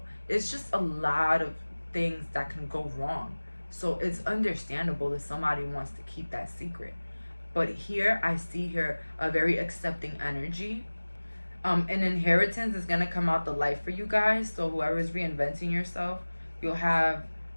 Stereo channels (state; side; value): inverted; both; correlation -1.00